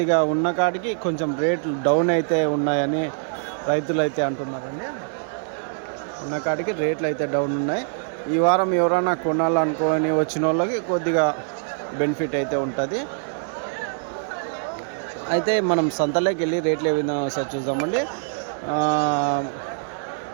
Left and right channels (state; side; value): silent; left; digital silence